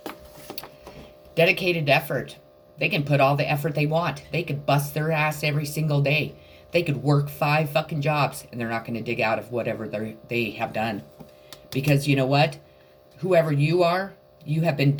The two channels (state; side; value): identical; both; correlation 1.00